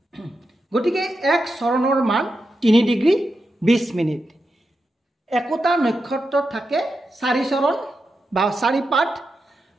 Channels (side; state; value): both; normal; correlation 0.88